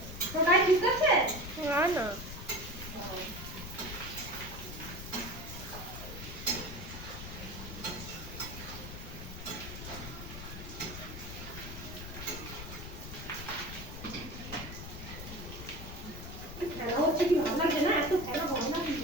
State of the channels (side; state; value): left; noise; rumble, 10 dB below the sound